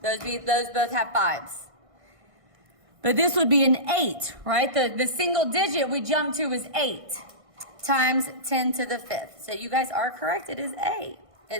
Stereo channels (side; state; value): left; late; 1.6 ms